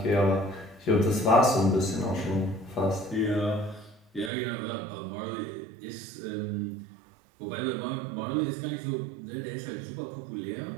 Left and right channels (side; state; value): left; drops out; at 4.3 s